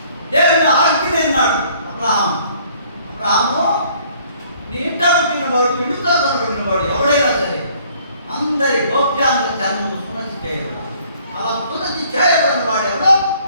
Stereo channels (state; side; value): inverted; both; correlation -0.60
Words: దేవుని ఆజ్ఞ అన్నాడు అబ్రహాము, నీ ఇంట పుట్టిన వాడు, ఇంటితో కొనబడిన వాడు ఎవడైనా సరే అందరి గోప్యాంగ చర్మము సున్నతి చేయబడాలి. అలా సున్నతి చేయబడిన వాడు ఎవడో